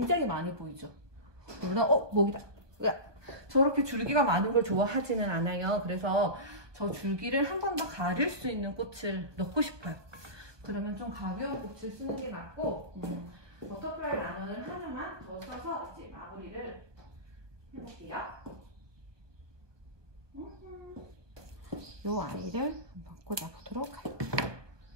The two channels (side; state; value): left; late; 1.2 ms